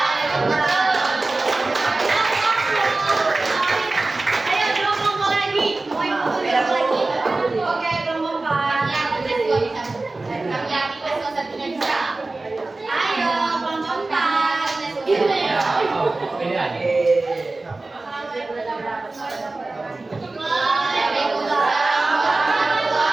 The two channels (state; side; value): quieter; left; 3.2 dB